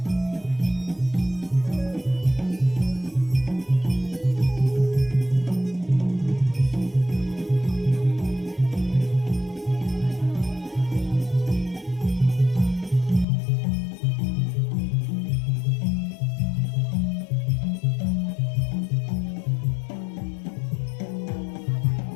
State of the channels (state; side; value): drops out; right; at 13.2 s